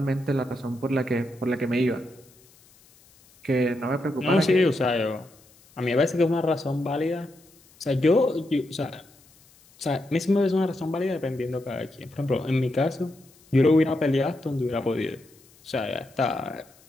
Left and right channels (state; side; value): noise; left; hiss, 28 dB below the sound